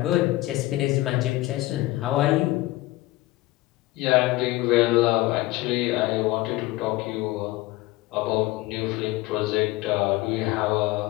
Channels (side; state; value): right; quieter; 18.6 dB